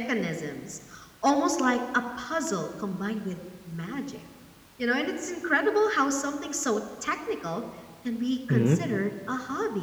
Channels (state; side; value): identical; both; correlation 1.00